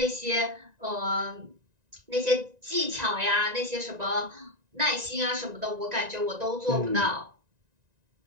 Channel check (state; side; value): late; left; 1.9 ms